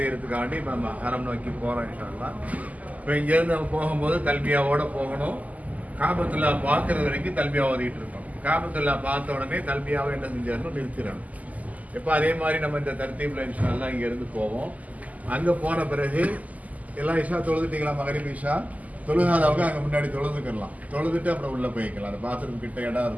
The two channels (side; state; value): left; late; 0.076 ms